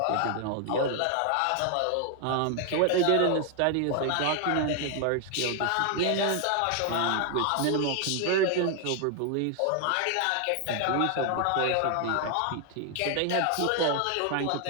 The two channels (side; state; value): both; different; correlation 0.00